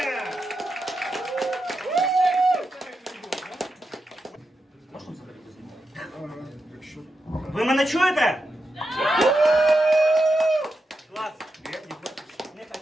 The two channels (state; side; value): normal; both; correlation 0.87